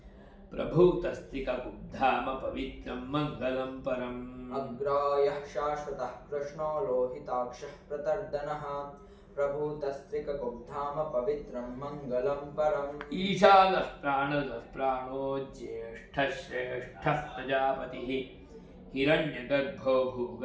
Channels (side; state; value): both; identical; correlation 1.00